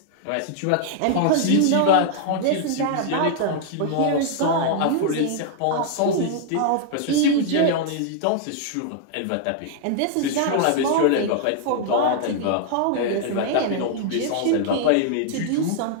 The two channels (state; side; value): different; both; correlation -0.01